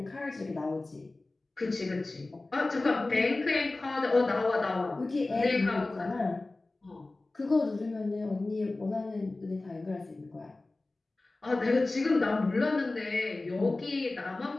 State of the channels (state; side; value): quieter; right; 3.1 dB